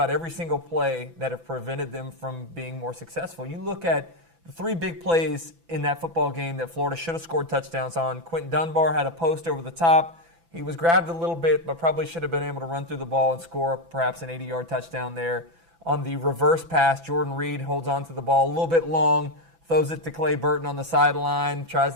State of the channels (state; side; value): late; left; 6.0 ms